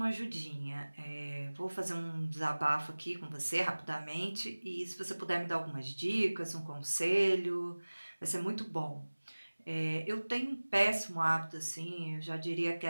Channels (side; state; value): both; inverted; correlation -1.00